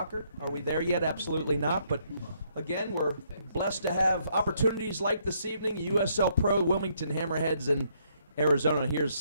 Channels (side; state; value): both; inverted; correlation -0.71